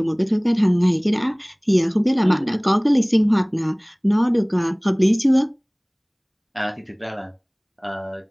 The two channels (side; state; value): both; identical; correlation 1.00